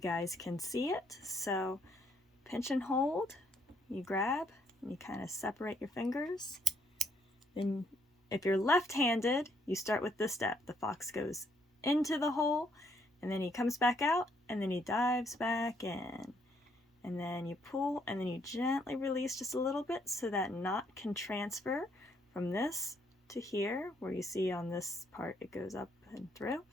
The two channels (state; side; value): normal; both; correlation 0.71